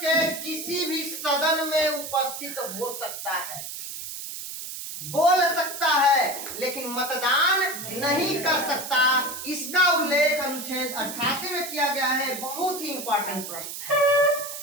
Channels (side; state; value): right; noise; hiss, 8 dB below the sound